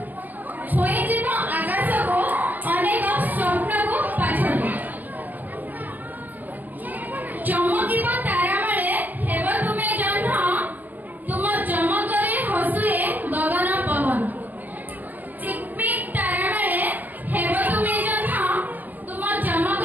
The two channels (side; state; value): left; late; 0.084 ms